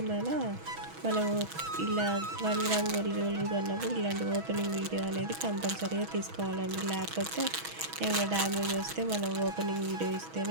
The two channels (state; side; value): late; left; 6.2 ms